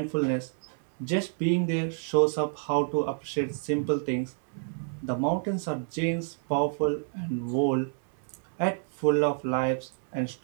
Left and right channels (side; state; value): left; silent; 59 dB below the other